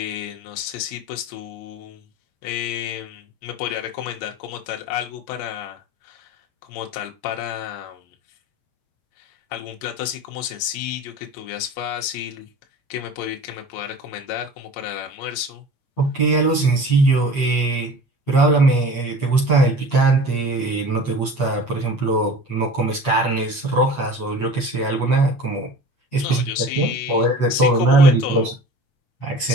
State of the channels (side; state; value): right; late; 8.6 ms